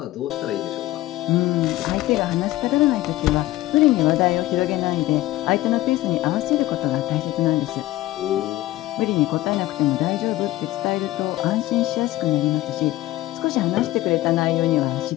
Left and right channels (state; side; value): quieter; right; 16.6 dB